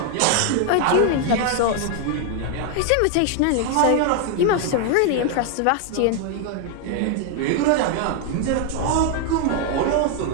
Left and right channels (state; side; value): different; both; correlation 0.01